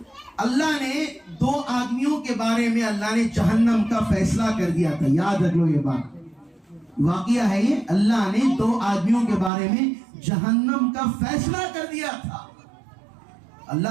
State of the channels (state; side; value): drops out; left; at 9.5 s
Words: اللہ نے 2 آدمیوں کے بارے میں اللہ نے جہنم کا فیصلہ کر دیا تھا. یاد رکھ لو, یہ بات واقعہ ہے. یہ اللہ نے 2 آدمیوں کے بارے میں جہنم کا فیصلہ کر دیا تھا.